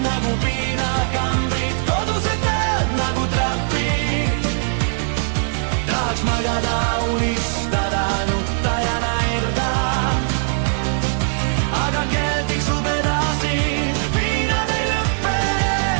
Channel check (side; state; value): left; silent; 66 dB below the other